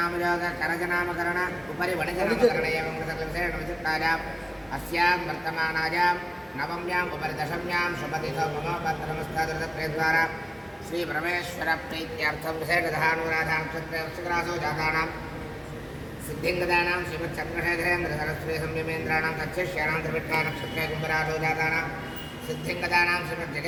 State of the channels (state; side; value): identical; both; correlation 1.00